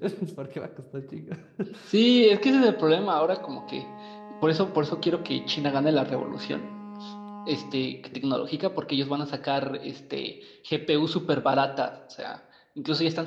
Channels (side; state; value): both; identical; correlation 1.00